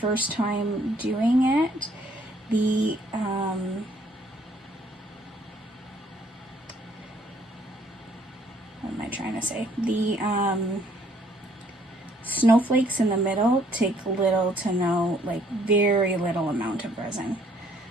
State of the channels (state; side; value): normal; both; correlation 0.64